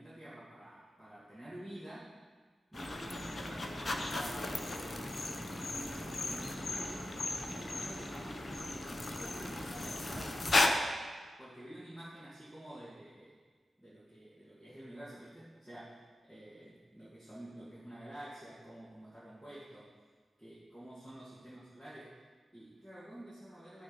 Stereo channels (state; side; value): normal; both; correlation 0.91